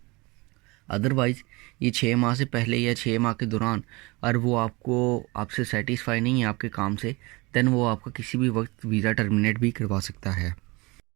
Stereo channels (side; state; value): left; quieter; 24.7 dB